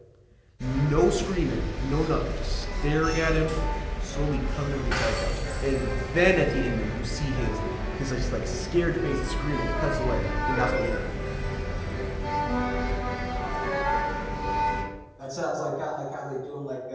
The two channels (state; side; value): identical; both; correlation 1.00